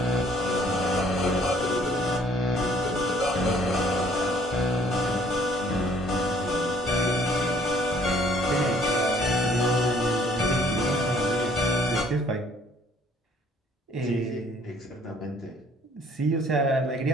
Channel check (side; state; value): both; normal; correlation 0.59